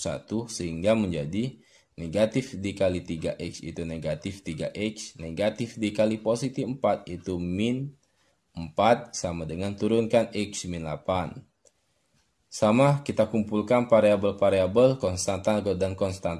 sehingga menjadi negatif dikali 3X itu negatif 3X. Negatif dikali positif 4 itu min 4 sama dengan turunkan X min 8. Sama, kita kumpulkan variabel-variabel konstanta dan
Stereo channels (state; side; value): identical; both; correlation 1.00